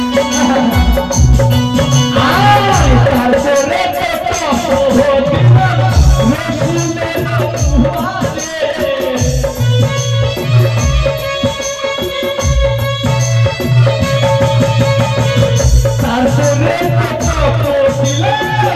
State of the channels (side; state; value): both; identical; correlation 1.00